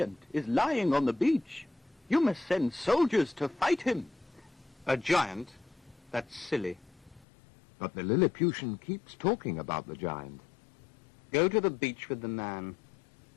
is lying on the beach. You must send soldiers to fight him. A giant? That's silly. But the Lilliputian keeps talking about the giant. Go to the beach with the man.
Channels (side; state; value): right; drops out; at 7.2 s